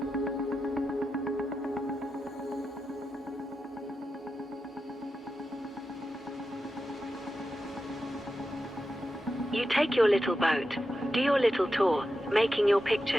You take your little boat, do your little tour, making your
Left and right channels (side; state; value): both; normal; correlation 0.90